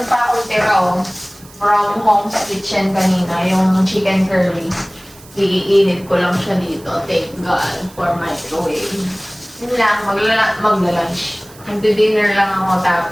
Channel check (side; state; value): right; noise; hiss, 23 dB below the sound